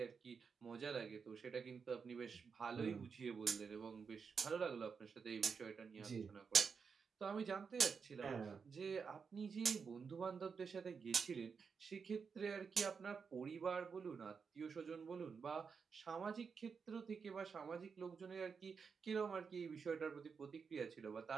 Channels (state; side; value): quieter; left; 5.7 dB